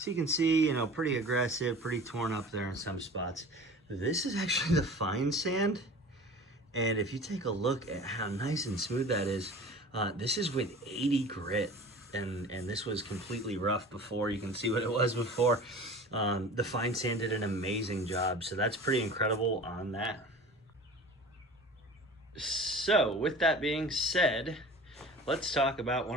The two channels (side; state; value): both; normal; correlation 0.40